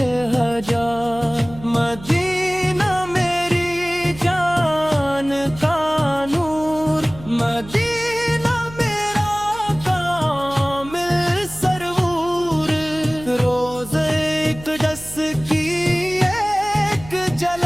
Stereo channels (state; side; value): noise; right; hum, 16 dB below the sound